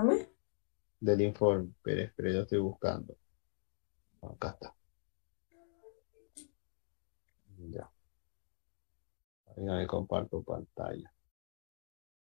del informe. Pero yo estoy buscando. Acá está. Ya. Venga, me comparto pantalla.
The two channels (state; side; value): silent; right; digital silence